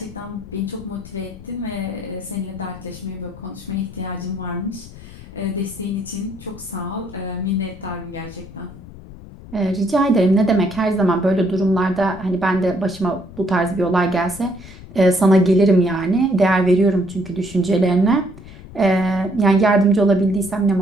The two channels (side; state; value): left; noise; rumble, 17 dB below the sound